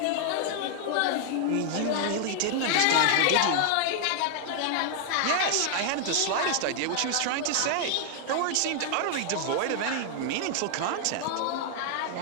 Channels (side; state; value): both; different; correlation 0.00